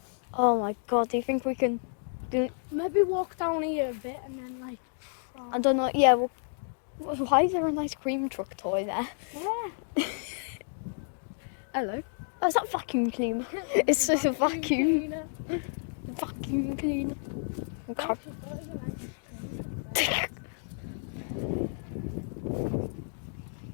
Oh my god, do you think we can do it? Maybe walk down here a bit and then like. I don't know. Yeah, well, why is there a nice cream truck toy there? Yeah. Hello. Oh, is that vacuum cleaner? It's just a vacuum. Cleaner. Vacuum cleaner. Okay.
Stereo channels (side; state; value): right; silent; digital silence